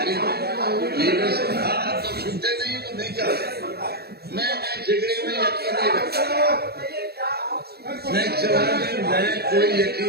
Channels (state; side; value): late; left; 0.46 ms